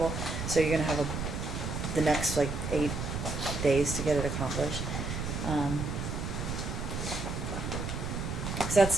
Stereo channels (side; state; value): right; noise; rumble, 3 dB below the sound